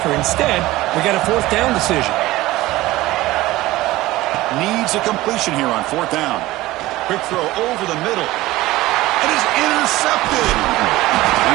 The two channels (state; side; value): quieter; left; 17.9 dB